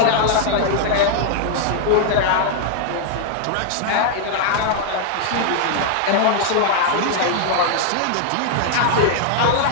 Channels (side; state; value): both; different; correlation 0.00